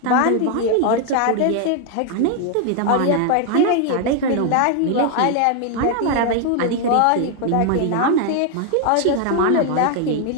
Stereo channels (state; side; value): different; both; correlation 0.00